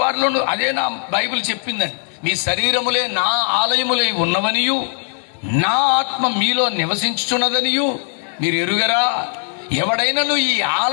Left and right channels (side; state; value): right; silent; digital silence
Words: వారిలోనూ, అదే నా బైబిల్ చెప్పిందని, మీ శరీరములే నా ఆలయములై ఉన్నవనియు, నా ఆత్మ మీలో నివసించుచున్నదనియు మీరు ఎరుగరా? ఎవడైనను ఈ